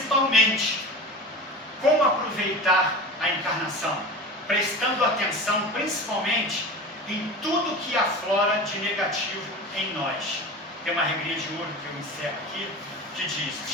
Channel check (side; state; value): both; normal; correlation 0.32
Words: como aproveitar a encarnação? Prestando atenção principalmente em tudo que aflora de negativo em nós. Tem uma regrinha de ouro que eu encerro aqui, que diz: